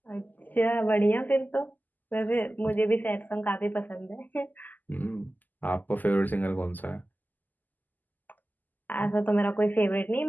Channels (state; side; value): late; right; 0.084 ms